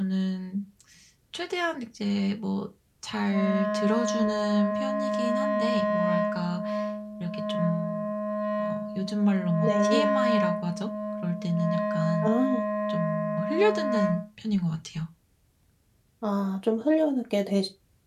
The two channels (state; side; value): identical; both; correlation 1.00